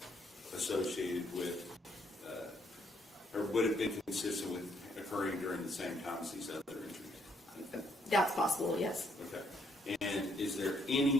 associated with, or would have been consistent with occurring during the same time as these other injuries? That's possible, yes. Okay. And is there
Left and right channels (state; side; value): normal; both; correlation 0.71